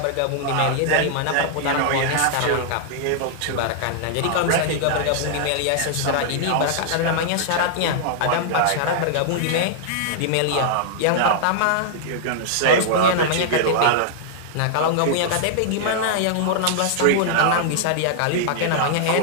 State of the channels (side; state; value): both; different; correlation -0.01